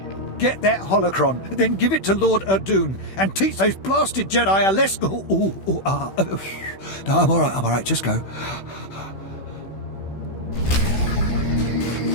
Get that holocron, then give it to Lord Alderaan, and teach those blasted Jedi a lesson. No, I'm all right, just go.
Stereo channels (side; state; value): right; late; 16 ms